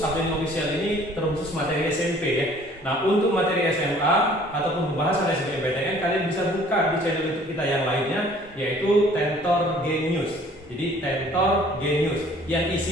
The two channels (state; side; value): normal; both; correlation 0.54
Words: Official ini terkhusus materi SMP ya. Nah, untuk materi SMA ataupun pembahasan SBMPTN kalian bisa buka di channel YouTube kita yang lainnya, yaitu Tentor Genius. Jadi Tentor Genius yang